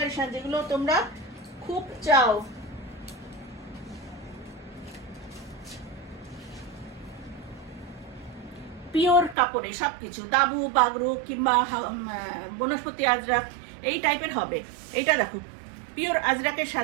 যেগুলো তোমরা খুব চাও। পিওর কাপড়ে সবকিছু, দাবু বাগরু কিংবা বনস্পতি আজরাক এই টাইপের হবে। এইটা দেখো পিওর আজরাকের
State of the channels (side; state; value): left; drops out; at 9.3 s